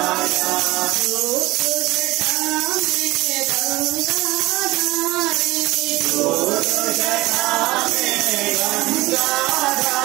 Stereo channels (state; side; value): quieter; left; 19.6 dB